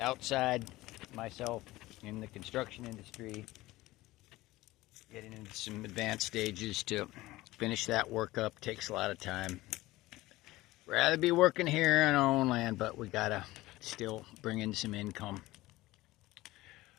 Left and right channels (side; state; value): right; quieter; 18.3 dB